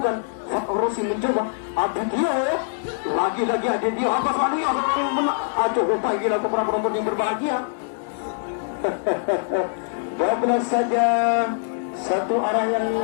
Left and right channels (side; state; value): right; silent; digital silence